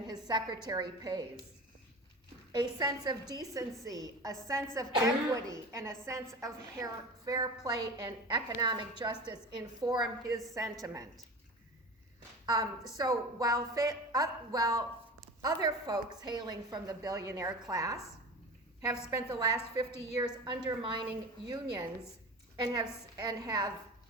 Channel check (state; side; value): normal; both; correlation 0.32